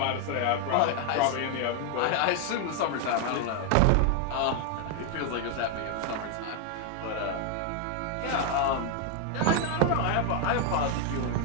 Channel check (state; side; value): different; both; correlation 0.00